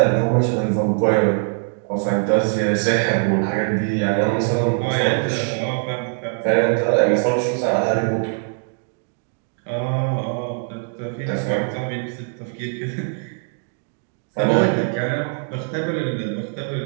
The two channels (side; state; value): left; silent; 59 dB below the other